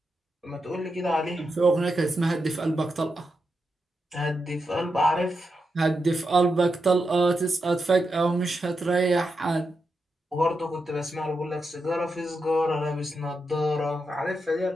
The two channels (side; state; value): both; normal; correlation 0.86